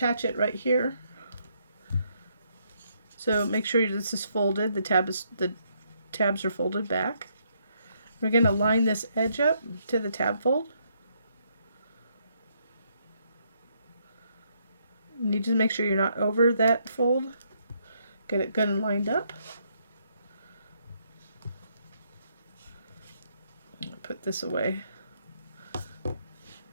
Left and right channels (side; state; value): both; inverted; correlation -0.73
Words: it right here. So make sure this is folded. The tabs are folded back. We're going to line this edge up to the tab fold. You need to make sure you're not over that fold. Get it good and lined up. Put this away.